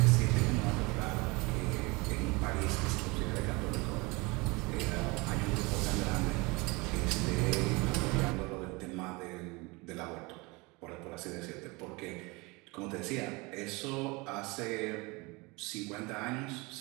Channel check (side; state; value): left; quieter; 25.7 dB